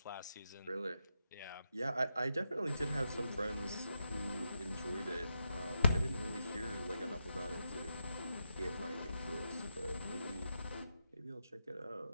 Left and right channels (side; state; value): both; inverted; correlation -0.85